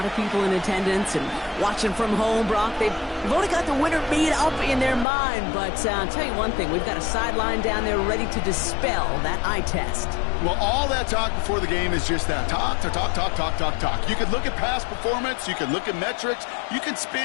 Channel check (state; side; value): drops out; right; at 5.1 s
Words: of people in attendance and watching from home, Brock, they've already got the winner made up in their mind. But I'll tell you one thing, we've got a sideline down there ready to dispel that eye test. Well, all that talk before the game is just that. Talk. You can look at past performance. You can look at metrics. You can